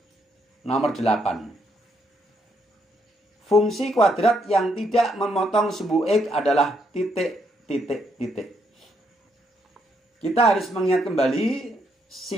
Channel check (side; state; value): both; normal; correlation 0.75